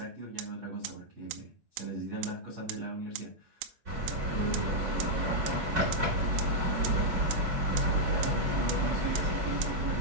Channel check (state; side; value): late; left; 6.1 ms